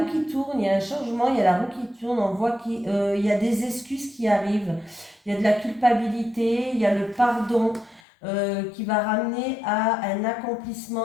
qui tourne, il y a un changement, il y a la roue qui tourne, on voit qu'il y a des excuses qui arrivent, il y a de la culpabilité, il y a le pardon qui va ramener à un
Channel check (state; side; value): drops out; right; at 8.0 s